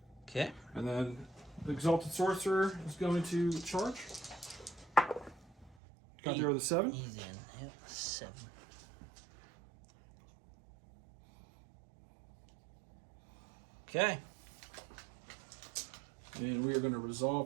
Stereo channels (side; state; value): left; drops out; at 5.8 s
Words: Okay. And then the Exalted Sorcerer is going to charge. Got there with a 7. He's in. Yep, 7. Okay. And we are going to